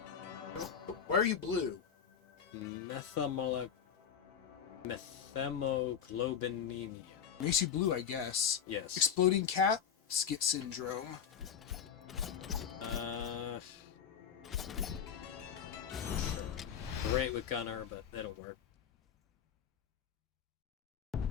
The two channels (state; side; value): quieter; right; 7.9 dB